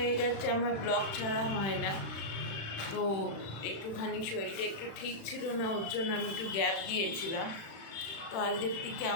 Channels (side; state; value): right; late; 36 ms